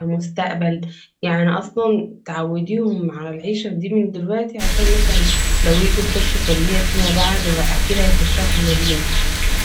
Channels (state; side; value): identical; both; correlation 1.00